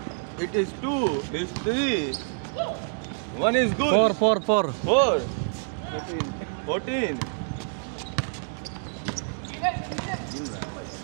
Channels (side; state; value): left; silent; digital silence